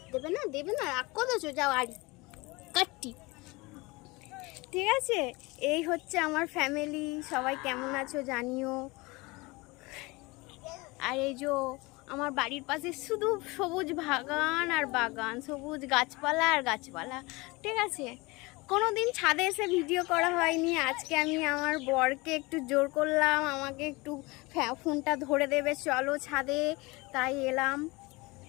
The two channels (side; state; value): right; quieter; 24.0 dB